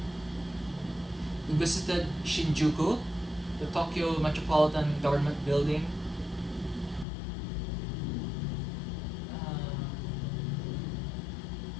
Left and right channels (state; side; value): drops out; right; at 7.1 s